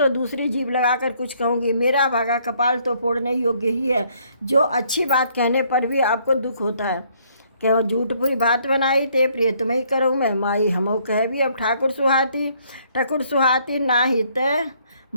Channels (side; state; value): both; inverted; correlation -0.66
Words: दूसरी जीभ लगाकर कुछ कहूँगी। मेरा भागा कपाल तो फोड़ने योग्य ही है, जो अच्छी बात कहने पर भी आपको दुख होता है। क्या झूठ पूरी बात बनाई, ते प्रिय तुम्हें करूँ मैं माई। हमो कह भी अब ठाकुर सुहाती ना ही तय